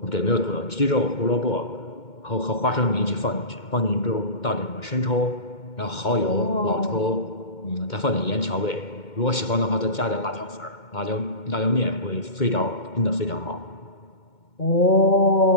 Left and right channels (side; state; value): right; late; 2.2 ms